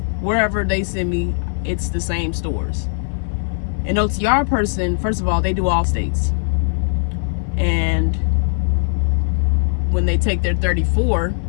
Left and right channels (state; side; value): silent; right; 58 dB below the other